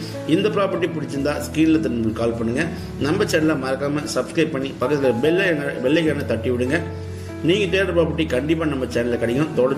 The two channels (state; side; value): identical; both; correlation 1.00